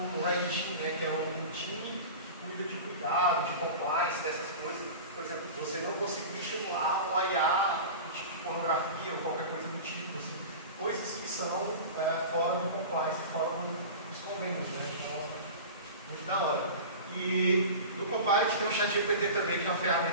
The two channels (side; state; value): both; inverted; correlation -0.33